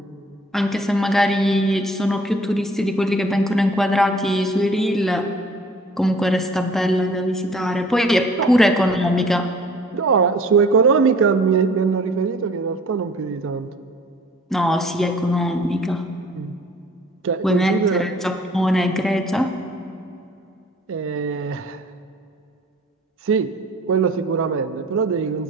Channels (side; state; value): both; normal; correlation 0.52